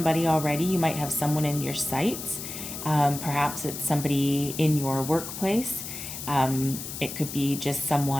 already. You might have someone in your sights. Perhaps it's somebody in your workplace. It could be just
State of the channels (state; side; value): noise; left; hiss, 8 dB below the sound